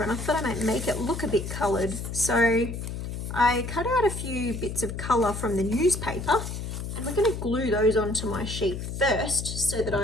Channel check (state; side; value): noise; left; hum, 6 dB below the sound